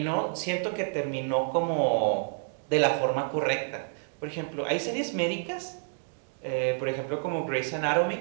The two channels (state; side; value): silent; left; digital silence